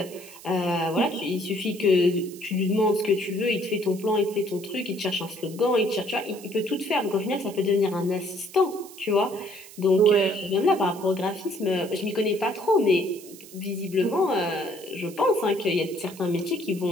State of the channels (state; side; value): noise; right; hiss, 18 dB below the sound